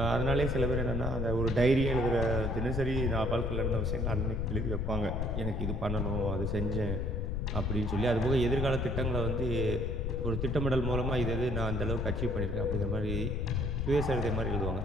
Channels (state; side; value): noise; left; rumble, 1 dB below the sound